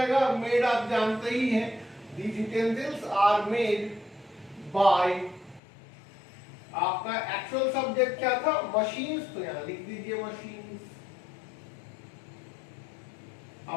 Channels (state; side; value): drops out; right; at 5.6 s